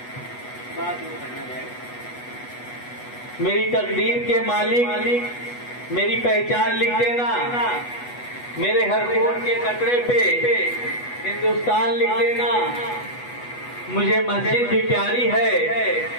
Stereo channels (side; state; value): right; late; 8.2 ms